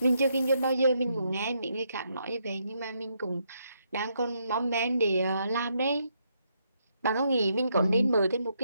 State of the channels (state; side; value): inverted; both; correlation -0.77